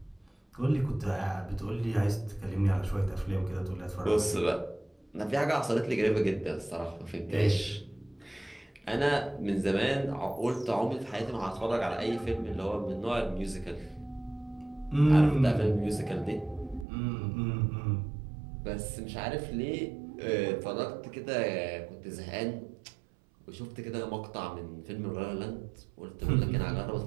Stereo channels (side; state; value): left; drops out; at 16.9 s